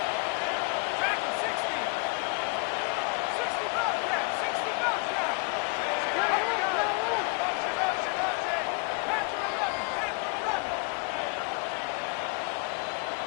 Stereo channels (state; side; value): quieter; right; 34.3 dB